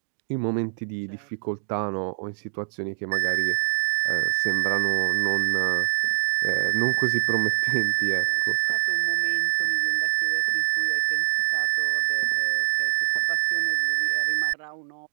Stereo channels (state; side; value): silent; left; digital silence